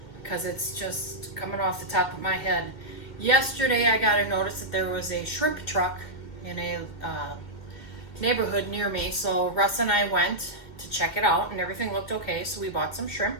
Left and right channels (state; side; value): late; right; 2.1 ms